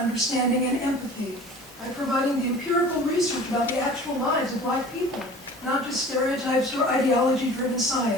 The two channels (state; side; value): normal; both; correlation 0.43